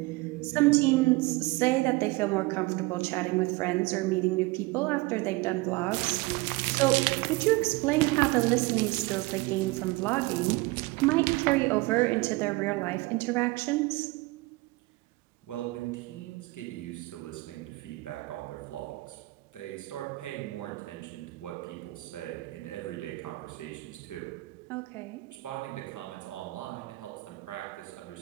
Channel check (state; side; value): quieter; left; 22.3 dB